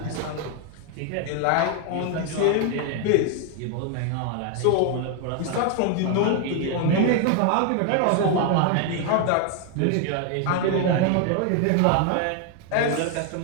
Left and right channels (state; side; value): different; both; correlation 0.00